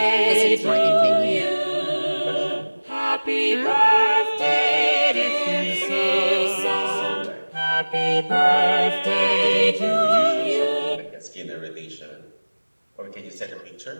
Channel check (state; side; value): inverted; both; correlation -1.00